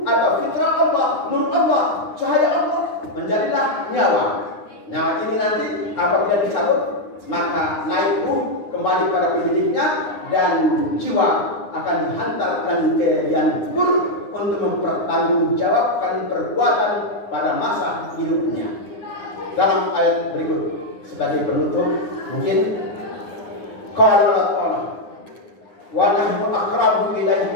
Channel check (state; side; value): late; right; 9.8 ms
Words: atau fitrah Allah, nur Allah, cahaya Allah, menjadilah nyawa. Nyawa ini nanti apabila dicabut maka naik ruh kembali pada pemiliknya dan jiwa akan dihantarkan ke liang kubur untuk mempertanggungjawabkan perbuatan pada masa hidupnya. Dalam ayat berikut sebagai penutup mungkin qala Allah wa nahnu aqrabu